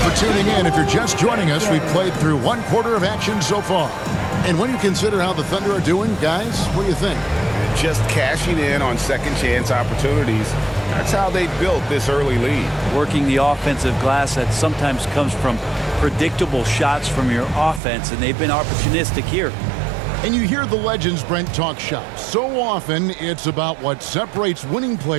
for tuning in. If you're just joining us, we've played through 1 quarter of action so far. And when you consider how the Thunder are doing, guys, what do you think? Just cashing in on second chance opportunities. That's how they built this early lead. Working the offensive glass that sometimes comes from predictable shots from your offense, and they've been opportunistic here. And you hear the legends, Brent, talk shop. So often it's about what separates winning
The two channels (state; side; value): drops out; left; at 17.8 s